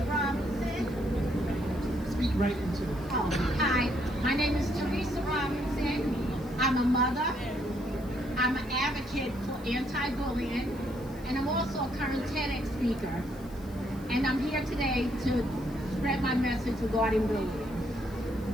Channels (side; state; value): left; noise; hiss, 24 dB below the sound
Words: Robinson. Speak right into it. Oh, hi. My name is Teresa Robinson. I'm a mother. I'm an advocate for anti-bullying, and I'm also a current TEDx speaker. And I'm here today to spread my message regarding bullying.